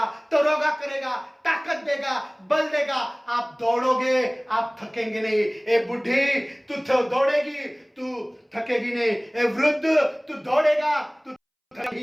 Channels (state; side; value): identical; both; correlation 1.00